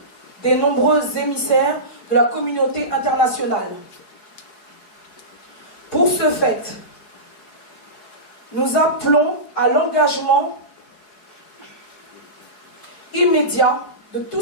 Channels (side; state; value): right; late; 4.8 ms